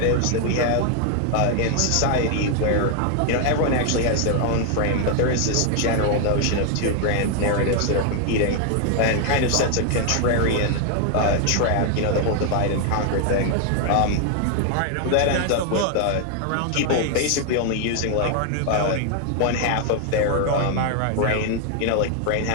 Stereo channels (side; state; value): both; different; correlation 0.00